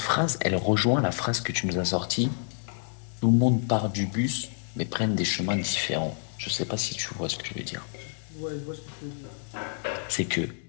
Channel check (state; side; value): silent; right; 59 dB below the other